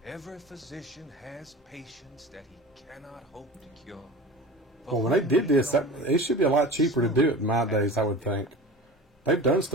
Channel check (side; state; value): both; normal; correlation 0.35